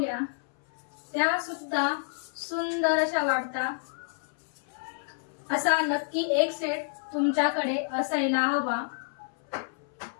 त्या सुद्धा सुंदर अशा वाटतात। असा नक्की एक सेट तुमच्याकडे असायला हवा।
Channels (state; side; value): silent; right; 58 dB below the other